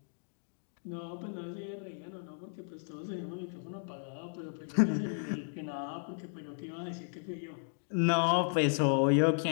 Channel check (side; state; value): right; silent; digital silence